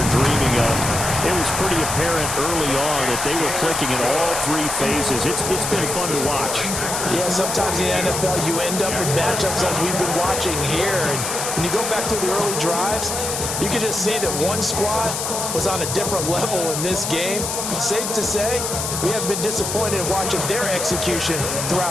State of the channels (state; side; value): noise; left; hiss, 3 dB below the sound